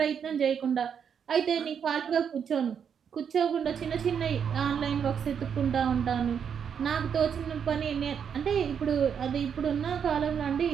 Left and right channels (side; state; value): left; quieter; 7.5 dB